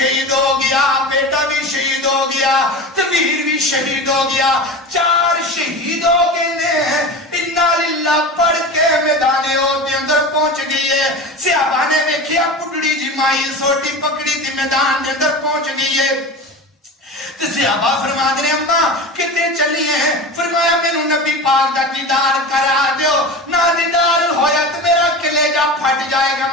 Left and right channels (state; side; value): normal; both; correlation 0.29